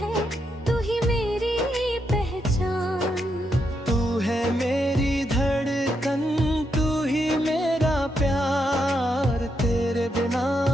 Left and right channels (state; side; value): normal; both; correlation 0.81